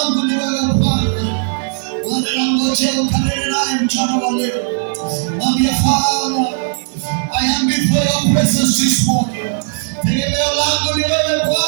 ni wewe Bwana. Bwana nangojea ukanene naye mchana wa leo. Mwambie Father, I am before your presence this morning. Tegemeo langu ni wewe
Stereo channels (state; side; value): silent; left; 69 dB below the other